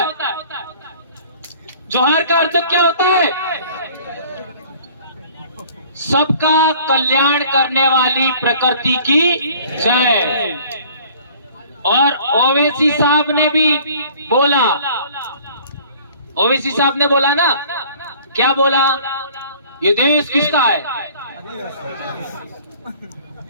जोहार का अर्थ क्या होता है? सबका कल्याण करने वाली प्रकृति की जय। और ओवैसी साहब ने भी बोला, ओवैसी साहब ने बोला ना, क्या बोला? ये देश किसका है?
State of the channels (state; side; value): inverted; both; correlation -0.51